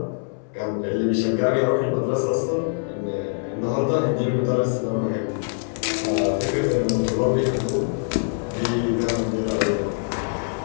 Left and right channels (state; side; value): silent; right; 63 dB below the other